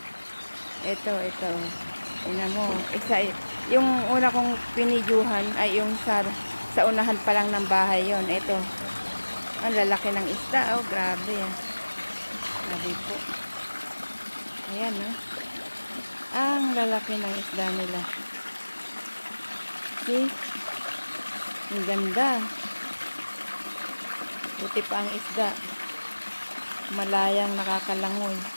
Ito. Ina mo. Yung una kong pinidyuhan ay yung sa unahan pa lang ng bahay yon. Ito. Ang lalaki ng isda. Oh, grabe. Grabe po. Ayan, no? Ang lalaki ng isda nila. See? Ang ganda. Buti pa ang isda. Malayang nakakalangoy.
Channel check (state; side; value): inverted; both; correlation -1.00